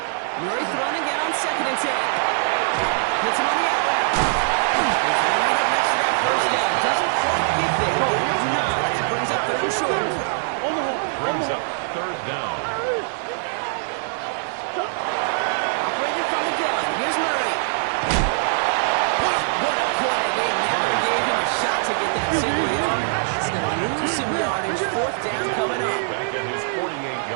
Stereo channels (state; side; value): silent; left; digital silence